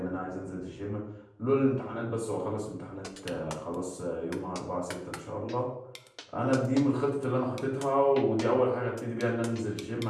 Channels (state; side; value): identical; both; correlation 1.00